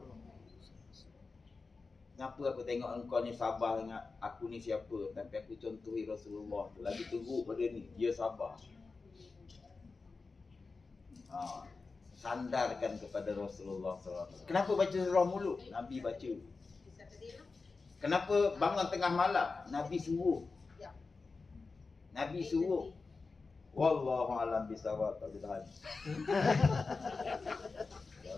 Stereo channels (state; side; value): quieter; right; 4.2 dB